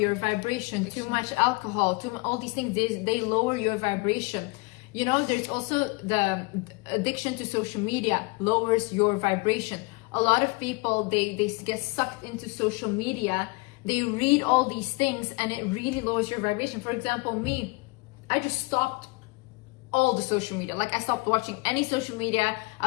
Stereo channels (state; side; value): quieter; right; 26.9 dB